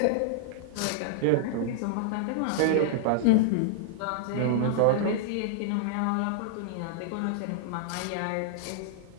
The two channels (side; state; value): both; different; correlation -0.01